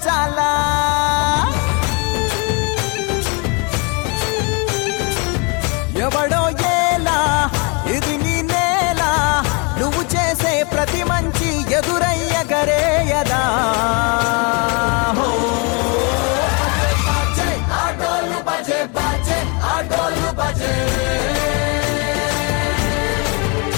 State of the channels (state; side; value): quieter; right; 32.3 dB